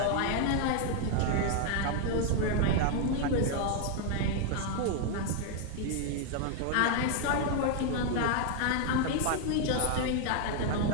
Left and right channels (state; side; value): different; both; correlation 0.00